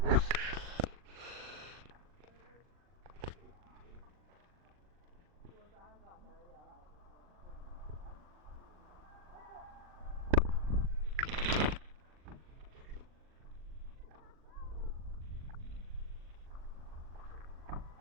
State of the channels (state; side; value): late; left; 40 ms